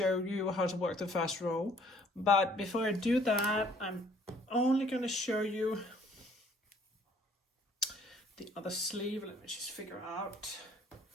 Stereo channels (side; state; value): both; normal; correlation 0.59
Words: you how to work the first row. But before I do that, I'm only going to show you the other sleeve. Let me just figure out.